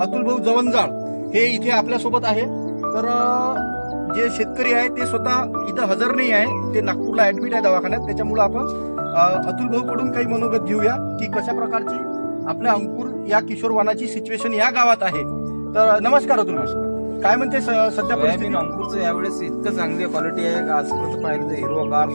अतुलभाऊ जवंजाळ हे इथे आपल्यासोबत आहे. तर जे शेतकरी आहे ते स्वतः इथं हजर नाही आहे, ते नागपूरला ऍडमिट आहे दवाखान्यात. त्याच्यामुळे आपण अतुलभाऊ कडून काही मनोगत घेऊया की कशा प्रकारची आपल्या अंकुर या किशोर वाणाची सिच्युएशन या गावात आहे. तर नमस्कार अतुलभाऊ, काय म्हणते सध्या परिस्थिती? अंकुरचं यावेळेस इतकं चांगली क्वालिटी आहे का आजपर्यंत पाहिलं तर हिरवागार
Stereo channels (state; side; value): inverted; both; correlation -1.00